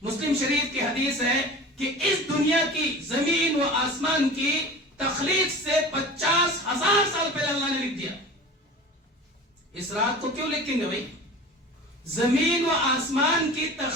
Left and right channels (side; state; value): both; normal; correlation 0.36